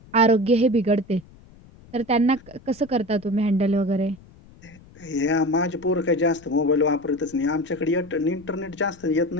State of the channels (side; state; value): left; noise; rumble, 24 dB below the sound